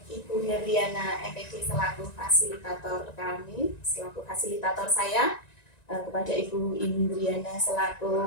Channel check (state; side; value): late; right; 1.9 ms